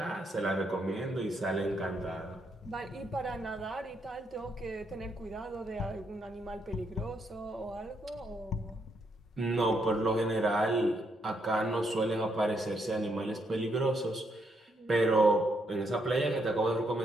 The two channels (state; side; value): normal; both; correlation 0.77